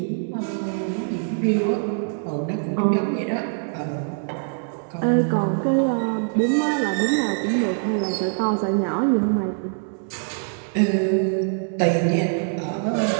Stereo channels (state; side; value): silent; left; 63 dB below the other